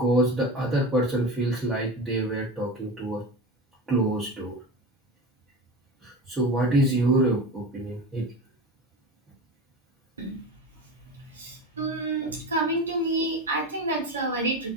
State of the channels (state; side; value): normal; both; correlation 0.27